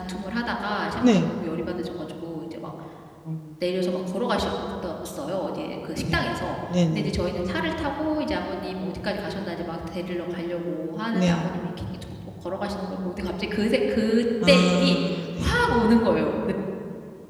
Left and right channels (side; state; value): both; identical; correlation 1.00